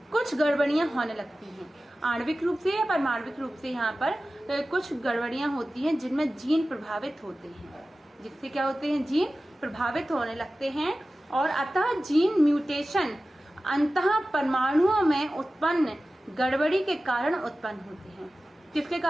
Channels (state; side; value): normal; both; correlation 0.95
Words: कुछ गड़बड़ियां होने लगती हैं, आणविक रूप से या परमाणविक रूप से यहाँ पर कुछ गड़बड़ियां होती हैं जिनमें जीन प्रभावित होते हैं, जिससे क्या होते हैं, जीन प्रभावित होने लगते हैं। और अतः जीन म्यूटेशन अंतः परमाणुओं में उत्पन्न गड़बड़ी के कारण उत्पन्न होते हैं। किसके